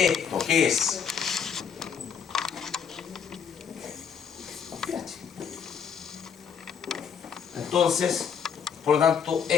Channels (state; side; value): quieter; right; 7.2 dB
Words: ¿qué es? pH. Entonces, por lo tanto,